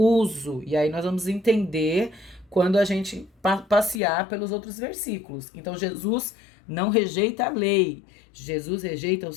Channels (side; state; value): right; drops out; at 4.0 s